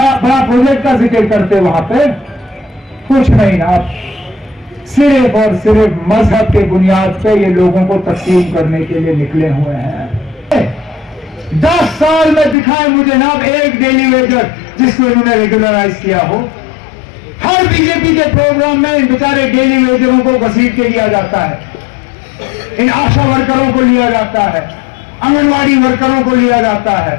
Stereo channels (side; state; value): right; drops out; at 12.6 s